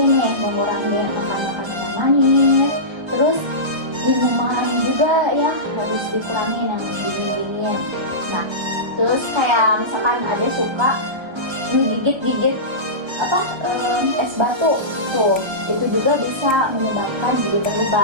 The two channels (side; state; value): left; late; 1.3 ms